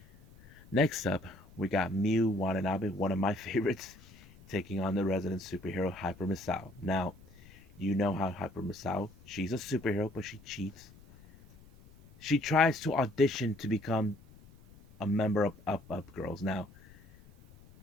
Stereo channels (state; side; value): noise; left; rumble, 23 dB below the sound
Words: Next up, we got Miu Watanabe, one of my favorites, taking on the resident superhero Hyper Misao. Now, you know how Hyper Misao, she's a superhero, but she cheats. She tries to audition to become a member of Up Girls. Now,